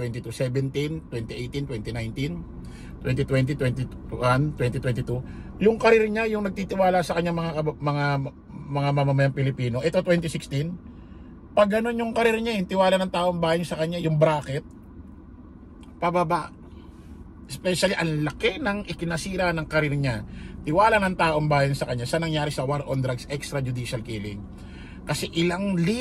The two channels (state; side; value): identical; both; correlation 1.00